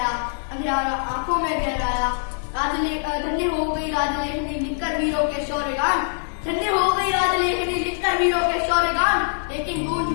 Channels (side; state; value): right; silent; digital silence